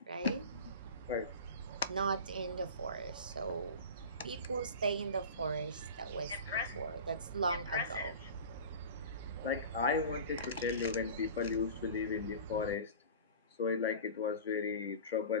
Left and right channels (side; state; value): both; inverted; correlation -0.35